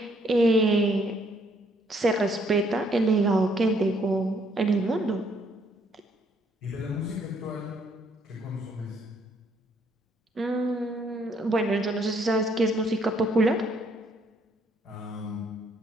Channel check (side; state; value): both; normal; correlation 0.68